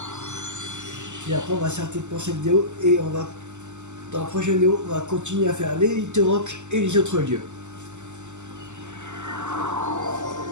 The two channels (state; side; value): late; left; 0.84 ms